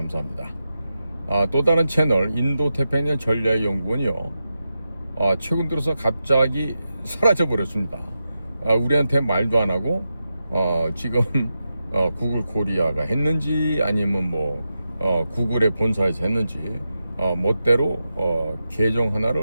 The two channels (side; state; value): both; inverted; correlation -0.89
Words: 또 다른 채널 인도태평양 전략연구원이요, 최근 들어서 갑자기 사라져 버렸습니다. 우리한테 말도 안 하고 지금 구글 코리아가 했는지 아니면 구글의 본사에서 했는지 멋대로 계정